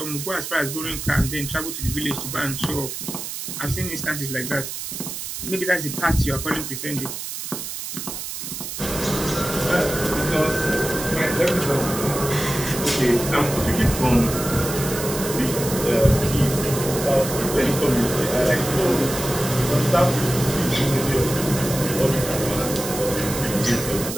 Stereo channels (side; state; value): right; noise; hiss, 7 dB below the sound